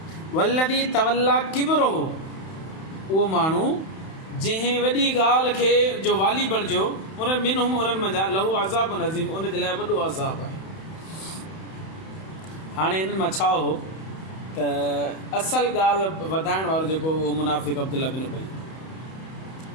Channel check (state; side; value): late; right; 31 ms